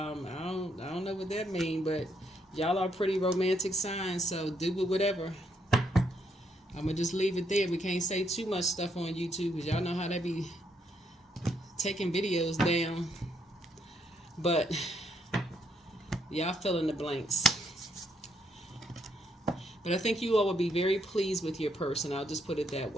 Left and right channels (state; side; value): normal; both; correlation 0.74